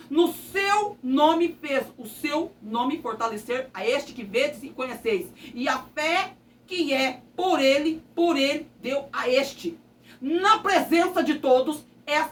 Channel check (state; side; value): identical; both; correlation 1.00